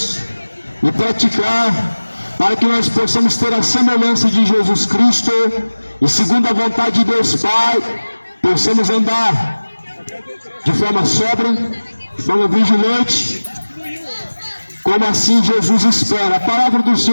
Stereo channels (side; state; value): both; inverted; correlation -1.00